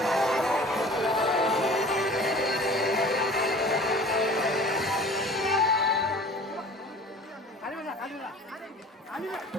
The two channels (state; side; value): normal; both; correlation 0.44